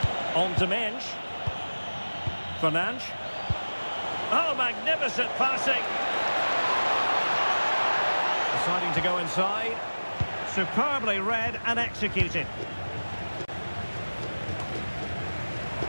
On to Mensch. Fernandes. Oh, magnificent passing. Deciding to go inside. Superbly read and executed.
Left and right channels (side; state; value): both; inverted; correlation -1.00